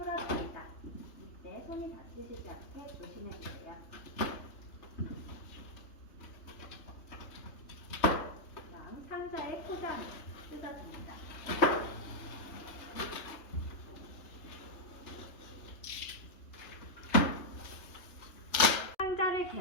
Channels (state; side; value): late; right; 3.3 ms